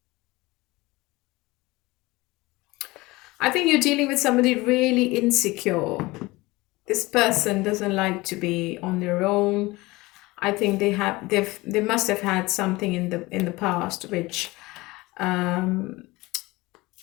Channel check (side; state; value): right; quieter; 21.4 dB